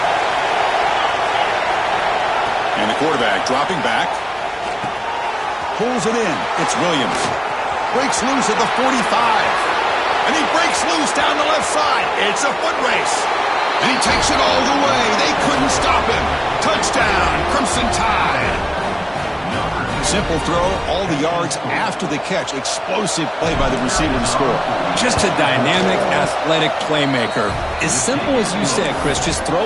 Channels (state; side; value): identical; both; correlation 1.00